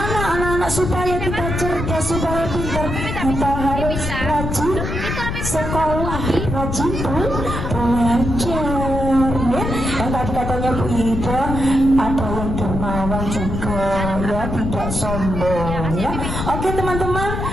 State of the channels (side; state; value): left; noise; rumble, 3 dB below the sound